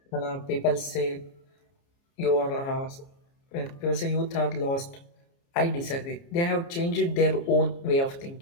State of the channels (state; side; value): late; right; 29 ms